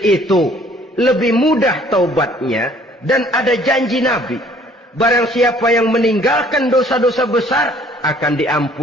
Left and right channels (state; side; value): normal; both; correlation 0.57